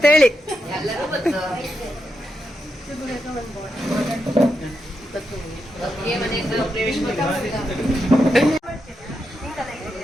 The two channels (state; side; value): normal; both; correlation 0.85